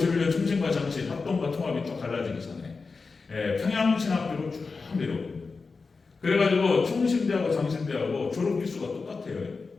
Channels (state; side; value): quieter; right; 4.4 dB